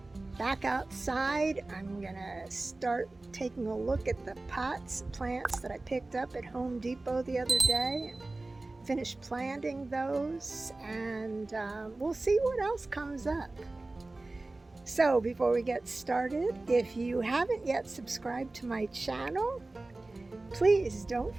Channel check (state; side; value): quieter; left; 3.1 dB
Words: back outside. I'm gonna start taking a look at the plants that I picked up at Home Depot the other day and finish planting those, and we'll see what else comes up. So before we get started, if you haven't yet subscribed to my channel, please don't